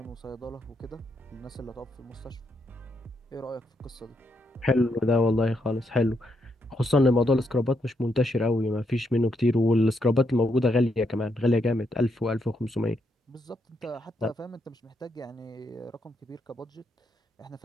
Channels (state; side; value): normal; both; correlation 0.78